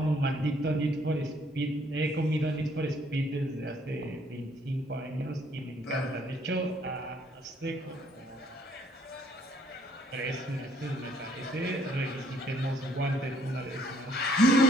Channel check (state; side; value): normal; both; correlation 0.64